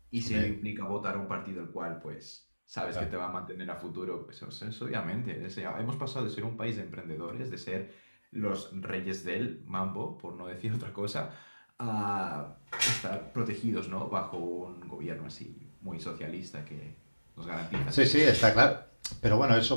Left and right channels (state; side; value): inverted; both; correlation -1.00